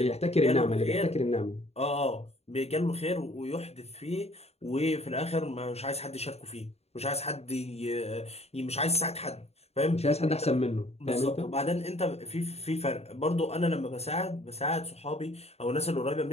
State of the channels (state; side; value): late; right; 0.30 ms